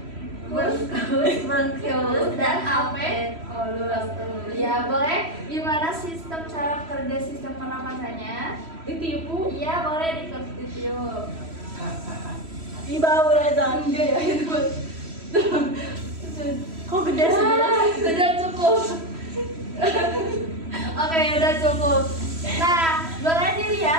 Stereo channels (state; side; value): late; left; 3.1 ms